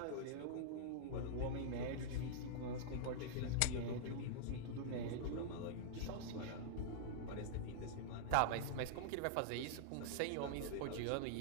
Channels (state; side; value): different; both; correlation -0.02